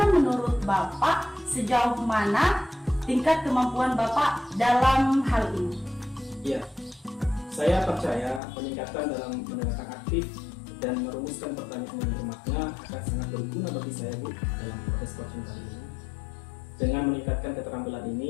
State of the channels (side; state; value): right; drops out; at 8.4 s